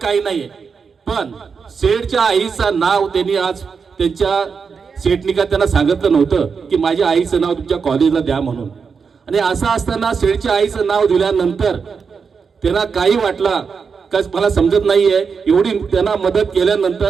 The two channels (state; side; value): quieter; left; 5.7 dB